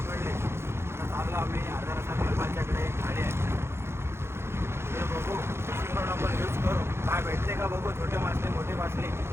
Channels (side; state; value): left; late; 0.12 ms